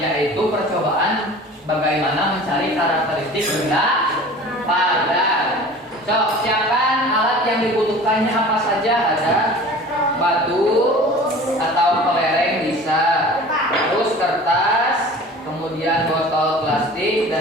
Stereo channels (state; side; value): normal; both; correlation 0.42